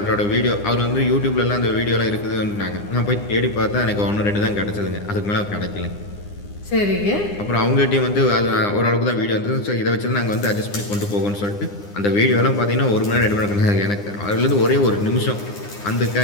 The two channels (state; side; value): late; right; 9.8 ms